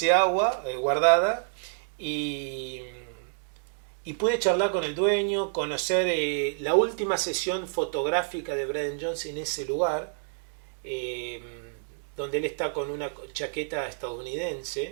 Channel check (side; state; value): left; silent; digital silence